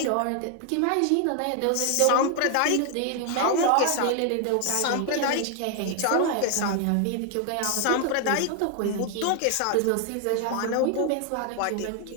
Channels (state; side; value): different; both; correlation 0.00